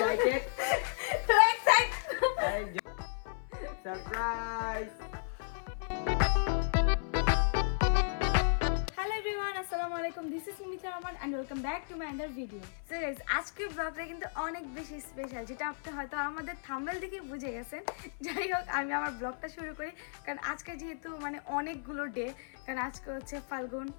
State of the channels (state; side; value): silent; right; 55 dB below the other